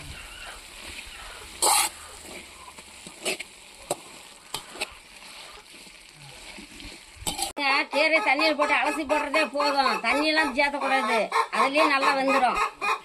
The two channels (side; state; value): both; identical; correlation 1.00